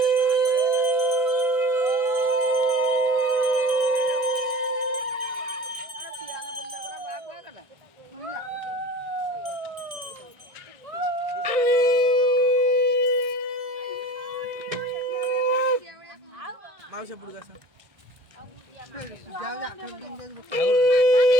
पियानो ଆଉ ସେପଟକୁ ଆସ ଯାଅ ଯା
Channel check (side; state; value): left; late; 1.6 ms